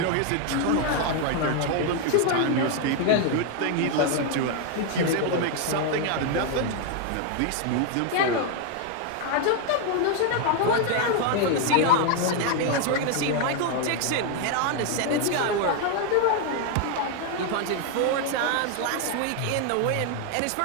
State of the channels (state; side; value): different; both; correlation 0.01